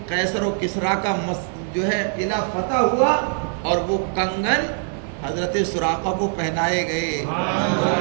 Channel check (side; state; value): left; silent; 58 dB below the other